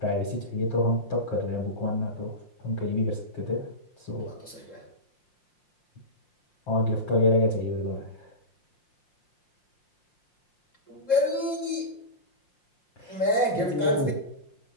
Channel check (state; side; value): late; right; 5.7 ms